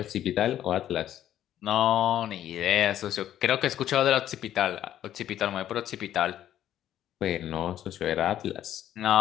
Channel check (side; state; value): right; quieter; 11.6 dB